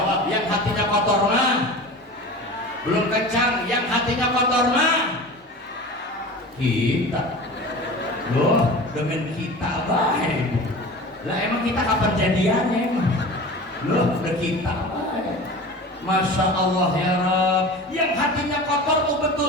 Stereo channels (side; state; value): both; normal; correlation 0.35